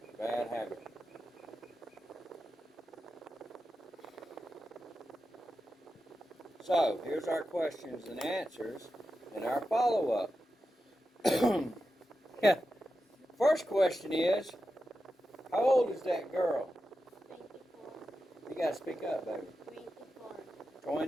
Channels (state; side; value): normal; both; correlation 0.90